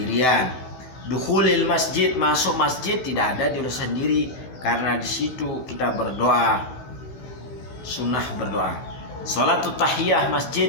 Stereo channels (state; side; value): late; right; 16 ms